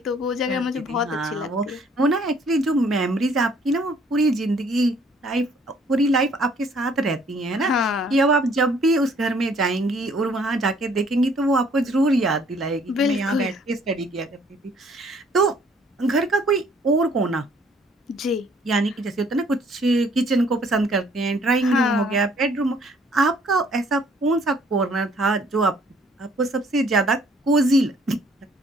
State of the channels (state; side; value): normal; both; correlation 0.61